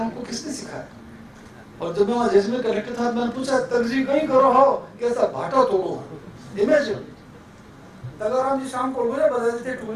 को किसने सिखाया? और जब मैं वहाँ जैसलमेर कलेक्टर था, मैंने पूछा तगजी कहीं करो हो, कैसा भाटा तोड़ो। इमेजिन, तगाराम जी शाम को अलगोजा बजाते थे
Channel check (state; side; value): identical; both; correlation 1.00